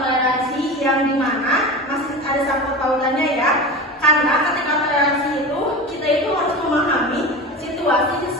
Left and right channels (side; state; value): both; normal; correlation 0.28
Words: toleransi yang dimana masih ada sangkut pautannya ya. Karena ketika toleransi itu kita itu harus memahami situasi